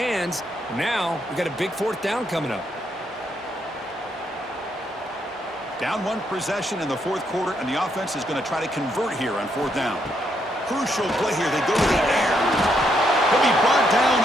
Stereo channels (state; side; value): normal; both; correlation 0.76